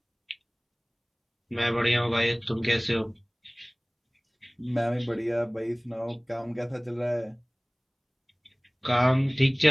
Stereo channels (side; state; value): both; identical; correlation 1.00